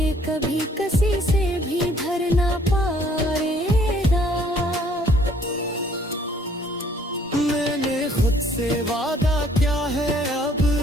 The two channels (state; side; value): normal; both; correlation 0.61